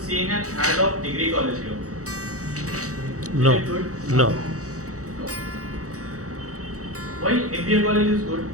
seeing an ad of degree college here. No. Is it good? No. No. Why MBA college is good?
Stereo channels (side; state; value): left; late; 0.65 ms